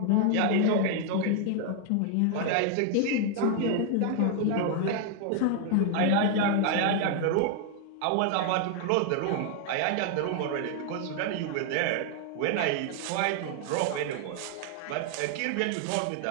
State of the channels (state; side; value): different; both; correlation 0.00